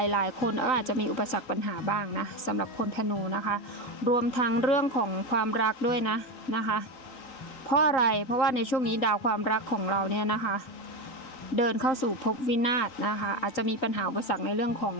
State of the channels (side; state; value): right; late; 3.9 ms